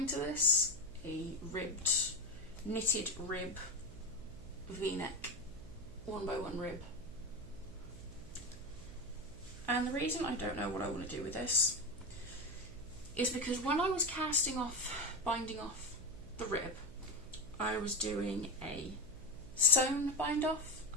to this, a knitted rib v-neck, 1x1 rib. And the reason I don't know what I want to do with this is because when I was binding off the rib, I was doing a sewn bind off,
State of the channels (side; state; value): right; noise; hum, 16 dB below the sound